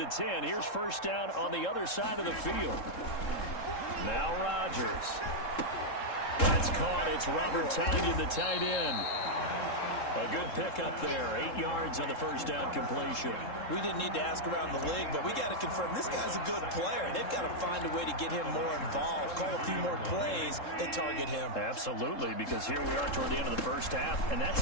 10, here's first down on the other side of the field. Now Rodgers. That's caught. It's Robert Tonyan, the tight end. A good pickup there. 8 yards on the first down completion. We didn't need to ask around the league, but we got to confirm this guy's a good player. They've got to find a way to get him more involved, call a few more plays that target him. Absolutely, because here we are toward the end of the first half, and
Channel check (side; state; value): right; late; 3.7 ms